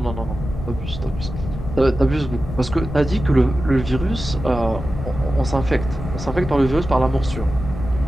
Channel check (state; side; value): noise; left; rumble, 8 dB below the sound